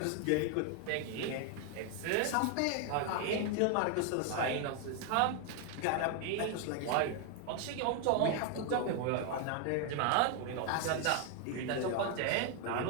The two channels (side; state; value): both; different; correlation 0.01